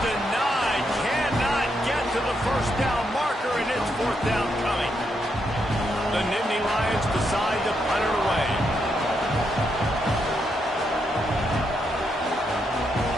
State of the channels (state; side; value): normal; both; correlation 0.80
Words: denied. Cannot get to the 1st down marker, and it's 4th down coming. The Nittany Lions decide to punt it away.